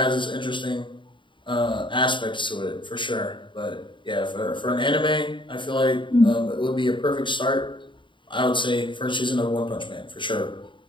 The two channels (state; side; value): late; right; 0.23 ms